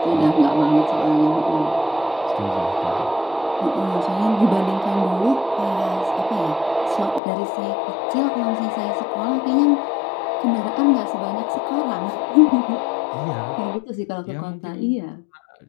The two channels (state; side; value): drops out; right; at 7.2 s